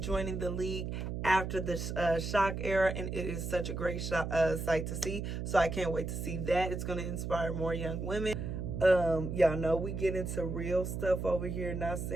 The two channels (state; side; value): noise; right; hum, 4 dB below the sound